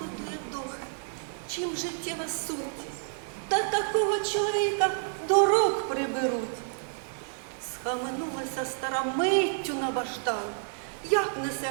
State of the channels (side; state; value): left; silent; digital silence